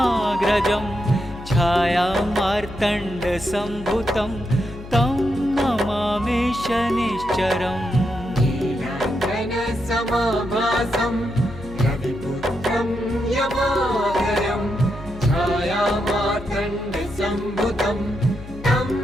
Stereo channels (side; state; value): left; noise; hum, 14 dB below the sound